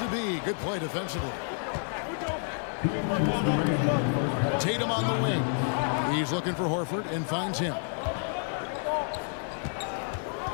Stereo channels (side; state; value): right; silent; 58 dB below the other